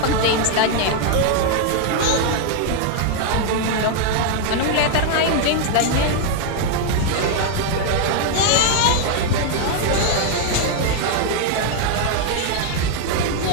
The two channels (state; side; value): different; both; correlation 0.00